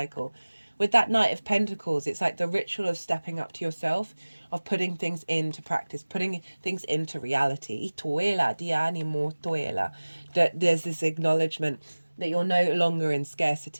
With that Knight of Pentacles, it's like the ritual of stepping up to yourself, of putting things into practice, putting things into reality. That there's this acknowledgement that you're no longer in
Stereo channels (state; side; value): inverted; both; correlation -1.00